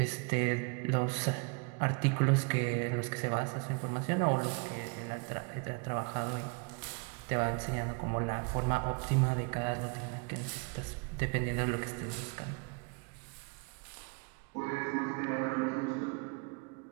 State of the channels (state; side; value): quieter; left; 33.5 dB